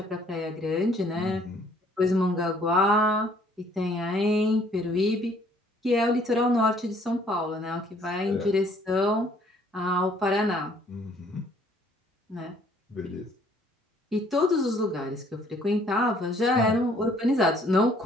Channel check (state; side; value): normal; both; correlation 0.61